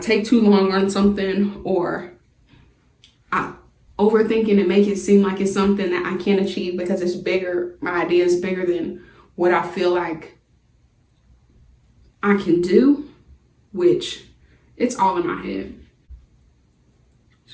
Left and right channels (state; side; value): identical; both; correlation 1.00